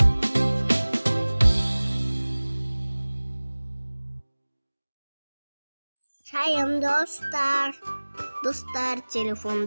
Шайым достар. Достар,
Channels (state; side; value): inverted; both; correlation -1.00